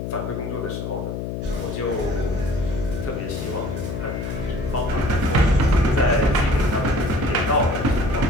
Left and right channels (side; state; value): left; noise; hum, 5 dB below the sound